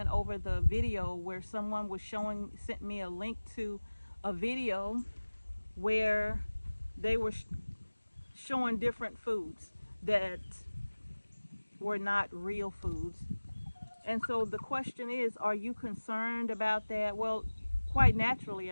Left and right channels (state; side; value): inverted; both; correlation -1.00